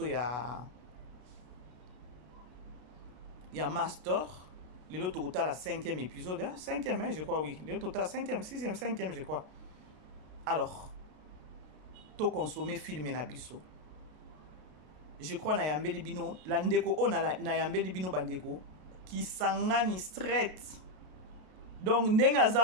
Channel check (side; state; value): left; late; 33 ms